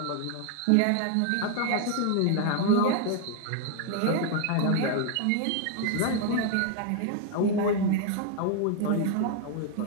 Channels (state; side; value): different; both; correlation 0.00